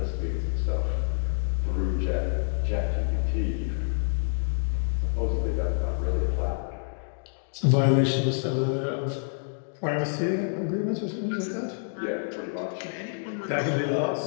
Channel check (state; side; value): silent; right; digital silence